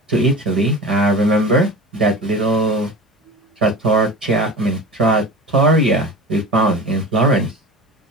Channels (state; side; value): normal; both; correlation 0.33